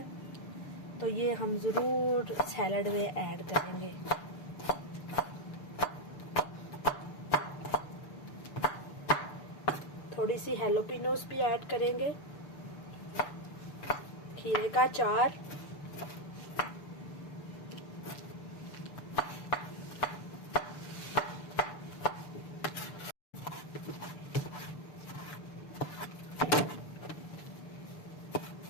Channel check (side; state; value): right; late; 6.8 ms